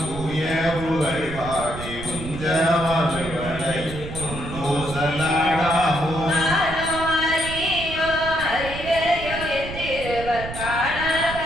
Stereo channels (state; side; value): noise; right; rumble, 10 dB below the sound